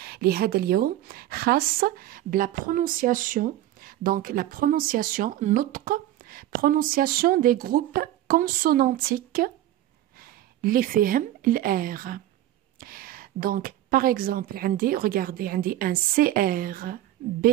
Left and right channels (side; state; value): left; quieter; 13.7 dB